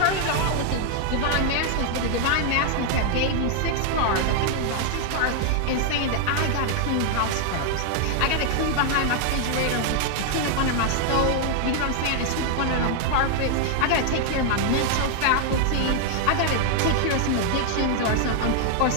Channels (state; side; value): different; both; correlation 0.00